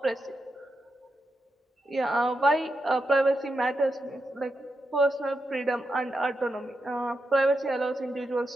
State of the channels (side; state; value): both; normal; correlation 0.86